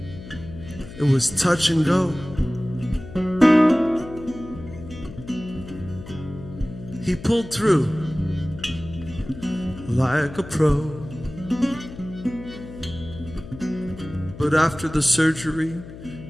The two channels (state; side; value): noise; left; hum, 14 dB below the sound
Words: it was touch and go. He pulled through like a pro. But after the surgery,